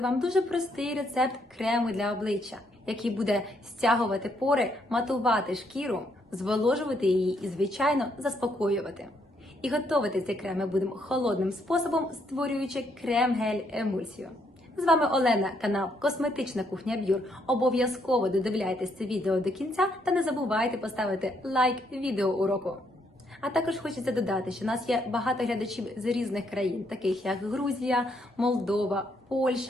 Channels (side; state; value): both; normal; correlation 0.73